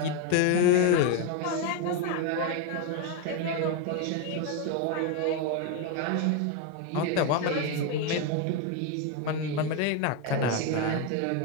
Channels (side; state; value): both; different; correlation 0.02